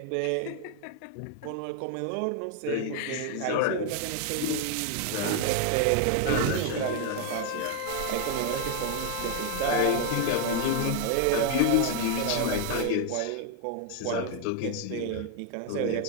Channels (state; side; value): different; both; correlation 0.00